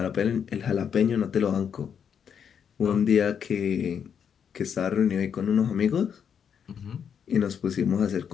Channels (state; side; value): quieter; right; 7.7 dB